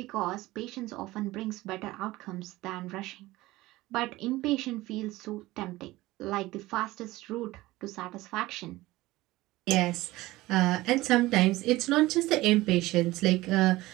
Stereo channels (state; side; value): quieter; left; 18.5 dB